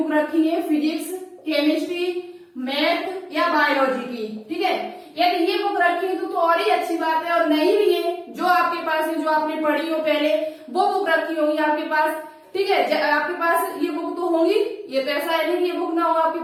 रखी है, फिजिक्स, केमिस्ट्री, मैथ या बायोलॉजी की, ठीक है। यदि ये बुक रखी है तो और ही अच्छी बात है। और नहीं भी है, जो आपके पास है, जो आपने पढ़ी हो पहले, वो बुक रखी होगी आपके पास, ठीक है। आपके पास ये बुक तो होंगी, ये तो ऐसा है नहीं कि ये बुक ना हो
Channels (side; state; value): both; identical; correlation 1.00